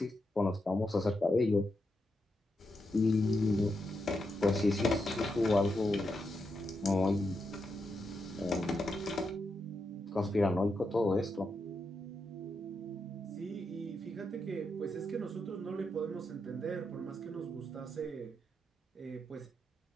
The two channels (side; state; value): both; normal; correlation 0.84